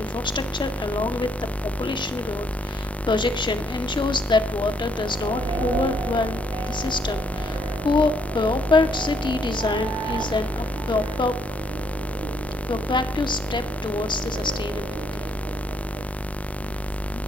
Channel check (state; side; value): normal; both; correlation 0.71